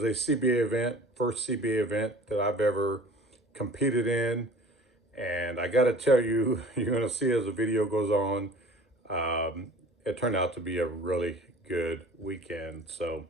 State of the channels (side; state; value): both; normal; correlation 0.45